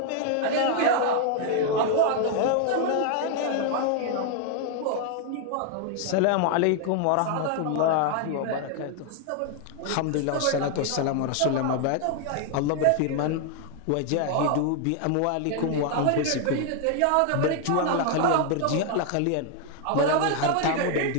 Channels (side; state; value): both; different; correlation 0.00